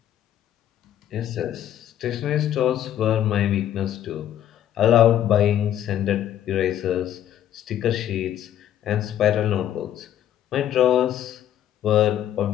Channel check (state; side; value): quieter; right; 11.2 dB